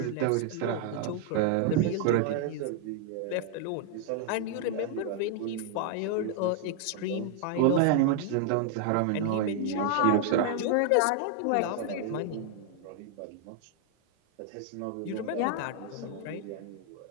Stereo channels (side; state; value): both; different; correlation 0.00